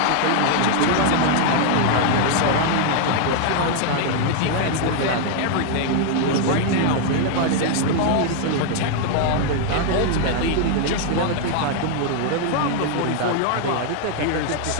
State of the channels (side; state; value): both; different; correlation 0.00